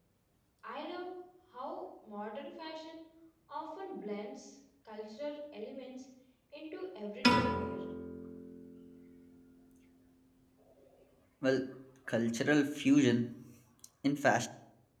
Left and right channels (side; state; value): both; identical; correlation 1.00